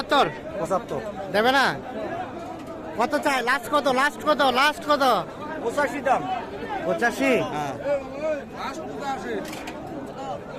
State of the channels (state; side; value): identical; both; correlation 1.00